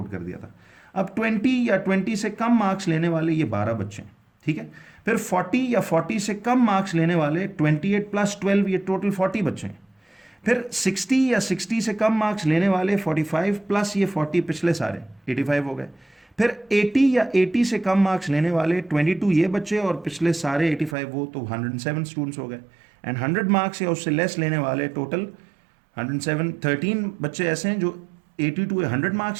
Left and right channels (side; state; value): left; drops out; at 21.0 s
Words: कर दिया था। अब 20 या 20 से कम मार्क्स लेने वाले ये 12 बच्चे हैं, ठीक है। फिर 40 या 40 से कम मार्क्स लेने वाले 28 + 12 ये टोटल 40 बच्चे हैं। फिर 60 या 60 से कम मार्क्स लेने वाले 45 प्लस ये 40 पिछले सारे 85 हो गए। फिर 80 या 80 से कम मार्क्स लेने वाले 22 ये बच्चे और पिछले सारे 85 वो, तो 107 स्टूडेंट्स हो गए। एंड 100 मार्क्स या उससे लेस लेने वाले टोटल 107 13 बच्चे ऐसे हैं जो 82 या 100